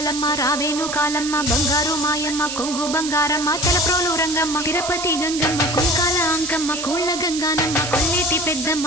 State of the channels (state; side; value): noise; right; hiss, 6 dB below the sound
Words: రావేను కాలమ్మ బంగారు మాయమ్మ కొంగు బంగారమ్మ తలప్రోలు రంగమ్మ తిరుపతి గంగమ్మ కుంకాల అంకమ్మ కోళ్ళ గంగానమ్మ కొల్లేటి